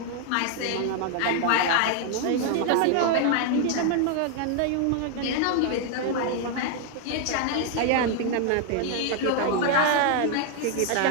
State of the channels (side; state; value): both; different; correlation 0.00